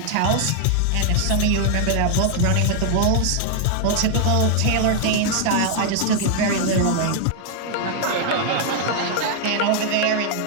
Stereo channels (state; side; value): different; both; correlation 0.00